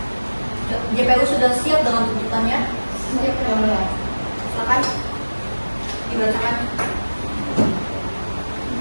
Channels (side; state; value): both; inverted; correlation -1.00